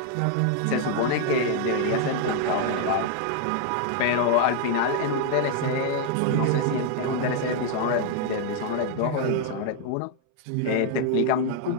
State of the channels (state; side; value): different; both; correlation 0.00